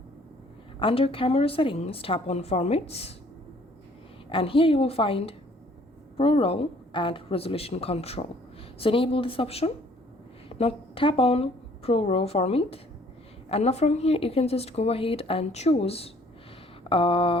Under camera settings, tap on formats, and here you will find ProRes and resolution control. So enable this option. Now tap on ProRes format, and now from here you can just go ahead and choose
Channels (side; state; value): both; normal; correlation 0.59